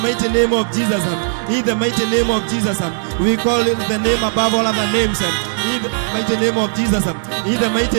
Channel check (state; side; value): silent; left; digital silence